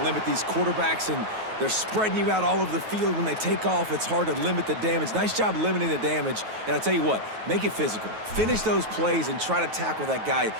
these quarterbacks, and they're spreading you out all over the field. When they take off, it's hard to limit the damage. Nice job limiting the damage. And I tell you what, make it physical. Finish those plays and try to tackle that guy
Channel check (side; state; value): left; late; 9.3 ms